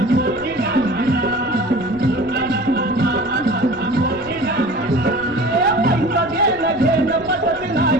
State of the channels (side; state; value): left; noise; rumble, 20 dB below the sound